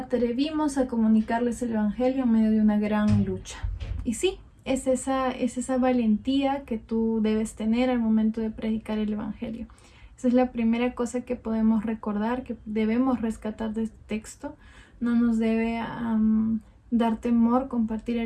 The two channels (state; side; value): identical; both; correlation 1.00